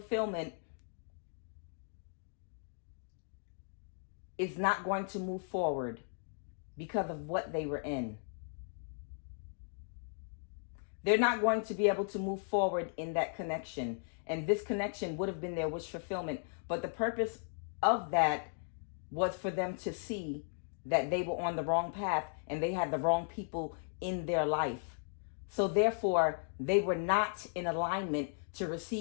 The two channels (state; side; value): silent; right; digital silence